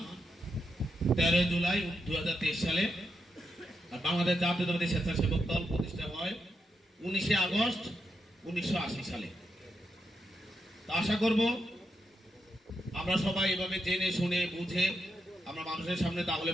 13 জুলাই 2023 সালে। আর বাংলাদেশ জাতীয়তাবাদী স্বেচ্ছাসেবক দল প্রতিষ্ঠা হয় 19 আগস্ট 1980 সালে। আশা করব আমরা সবাই এভাবে জেনে শুনে বুঝে আমরা মানুষের সামনে তাহলে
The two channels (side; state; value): both; normal; correlation 0.83